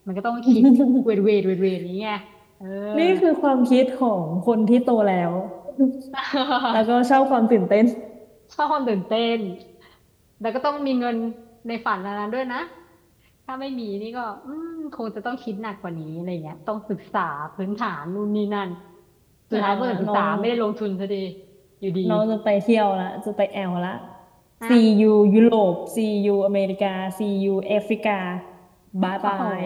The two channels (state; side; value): identical; both; correlation 1.00